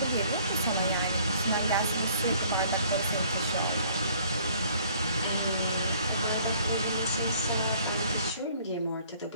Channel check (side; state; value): both; inverted; correlation -0.58